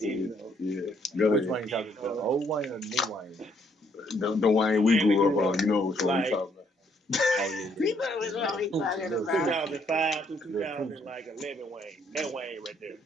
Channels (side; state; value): both; normal; correlation 0.69